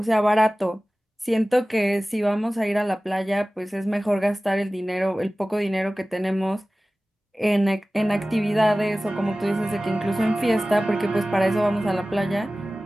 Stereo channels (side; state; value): both; normal; correlation 0.97